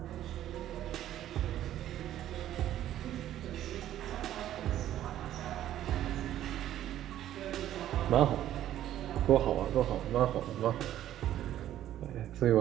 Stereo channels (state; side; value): quieter; left; 12.3 dB